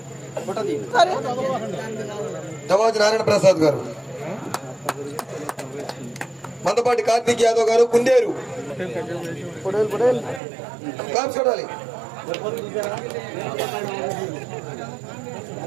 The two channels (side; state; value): left; drops out; at 10.4 s